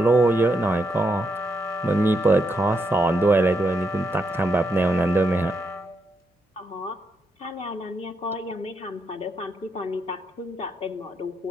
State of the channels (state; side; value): normal; both; correlation 0.80